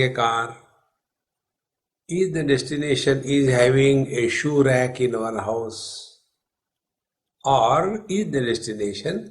a car? Is the destination is having a shoe rack in our house? Or is the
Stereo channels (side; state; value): both; identical; correlation 1.00